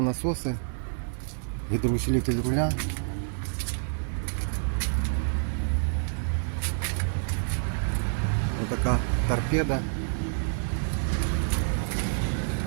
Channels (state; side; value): silent; left; digital silence